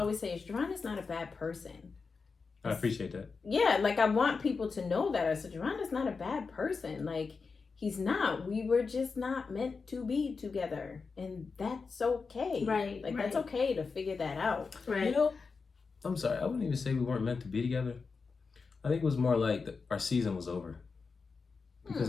say is, Jaron is not a bad person. I appreciate that. Yeah, like, I want people to know that. I said, Jaron is not a bad person. Like, he's not. We were just not meant to be together. And that's okay. Right. Like, that's okay to figure that out. Right. You know, I'm sorry. I wouldn't even say we weren't meant to be together. I think it was more like our season was over. Because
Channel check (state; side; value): quieter; right; 4.8 dB